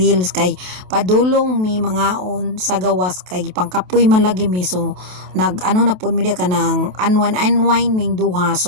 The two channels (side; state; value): left; late; 28 ms